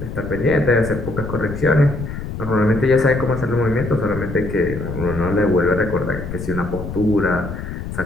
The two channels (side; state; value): left; noise; rumble, 8 dB below the sound